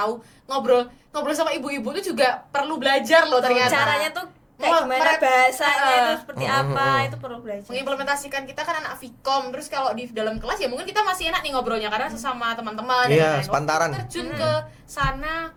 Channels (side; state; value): both; identical; correlation 1.00